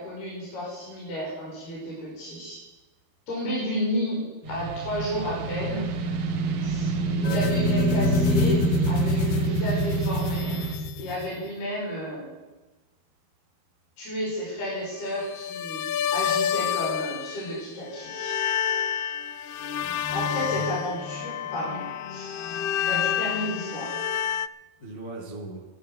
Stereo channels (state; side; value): late; right; 13 ms